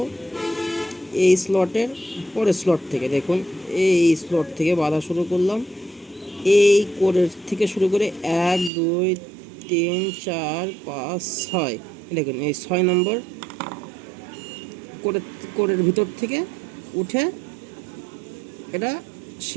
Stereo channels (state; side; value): drops out; left; at 8.7 s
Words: এই স্লটের পরের স্লট থেকে দেখুন, এই স্লট থেকে বাঁধা শুরু করলাম। এই কোরের থেকে শুরু করে 1 2 3 4 5 6 দেখুন, এই 6 নম্বর কোরের ভিতর থেকে উঠে এটা